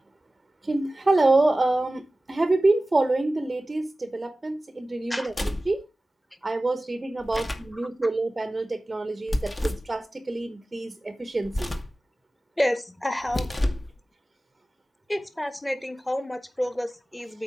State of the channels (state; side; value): normal; both; correlation 0.97